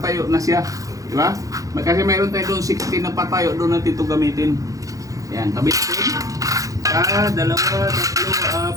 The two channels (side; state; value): left; late; 0.16 ms